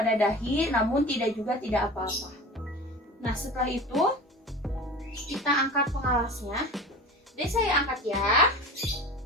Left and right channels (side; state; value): both; normal; correlation 0.34